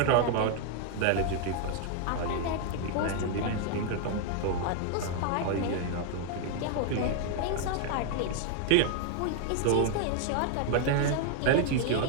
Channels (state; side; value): different; both; correlation 0.00